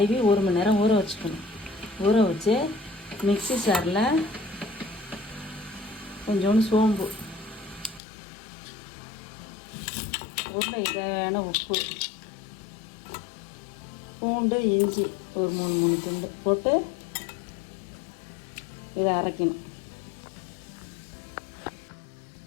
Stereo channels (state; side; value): drops out; right; at 8.0 s